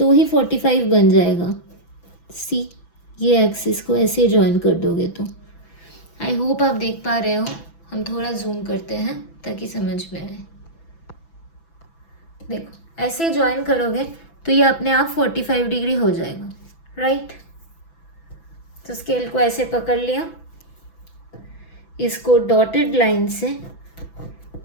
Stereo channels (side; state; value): right; late; 6.0 ms